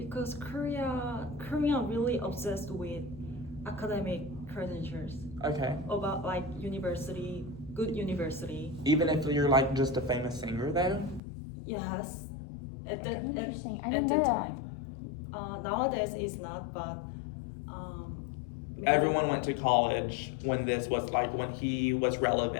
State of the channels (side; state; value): right; drops out; at 11.2 s